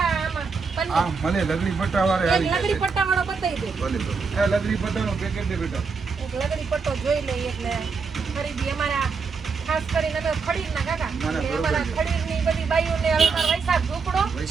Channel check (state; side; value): quieter; left; 5.0 dB